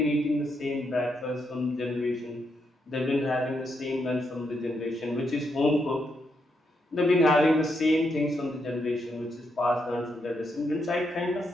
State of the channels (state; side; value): normal; both; correlation 0.80